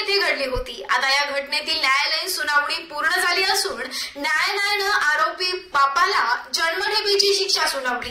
घडली होती। आता या घटनेतील न्यायालयीन सुनावणी पूर्ण झाली असून न्यायालयानं आरोपी बापाला जन्मठेपेची शिक्षा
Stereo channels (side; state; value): both; identical; correlation 1.00